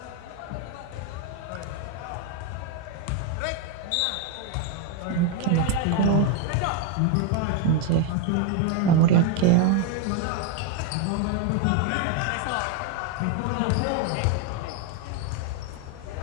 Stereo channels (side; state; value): both; different; correlation 0.01